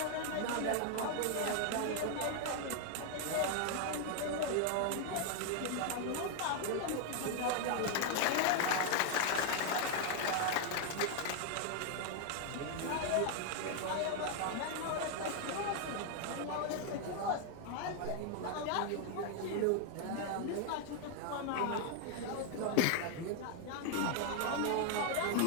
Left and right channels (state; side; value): different; both; correlation 0.00